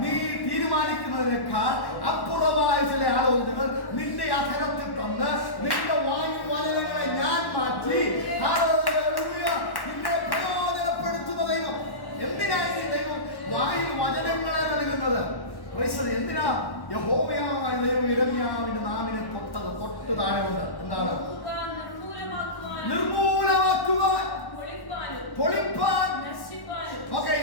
നീ തീരുമാനിക്കുന്നതിനേക്കാൾ അപ്പുറമായ ചില ആലോചനകൾ നിന്റെ അധരത്തിൽ തന്ന് നിന്റെ വായു വചനങ്ങളെ ഞാൻ മാറ്റി നിന്നെ പ്രയോജനപ്പെടുത്തുന്ന ദൈവം. എന്തിനായി ദൈവം വായു വചനങ്ങളെ നൽകുന്നത്? എന്തിനാ? യഹോവയായ ദൈവം യിരെമ്യാവിന്റെ നാവിനെ തൊട്ട് താഴെയുണ്ട്. എന്താണ്? നിർമൂലമാക്കുവാൻ, പൊളിപ്പാൻ. ഓക്കെ,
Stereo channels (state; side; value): late; right; 1.1 ms